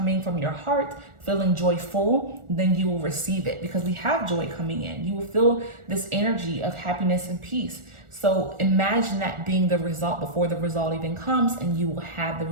from your heart, feeling joyful, then you will receive it, because we have joy coming in. You will feel this energy of happiness and peace. So imagine that being the result before the result even comes, and you will have the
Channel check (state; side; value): late; left; 1.4 ms